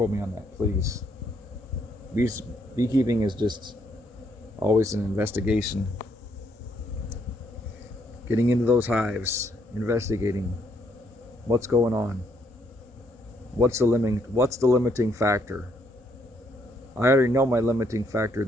me on that, please. Beekeeping is just always an investigation. Getting into those hives, investigating what's going on. What's the limiting factor? I already know my limiting factor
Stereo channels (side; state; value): both; normal; correlation 0.72